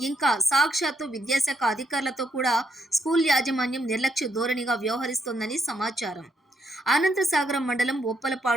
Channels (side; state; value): both; normal; correlation 0.76